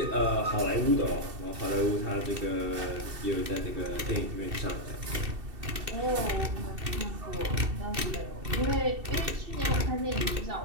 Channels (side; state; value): left; late; 2.7 ms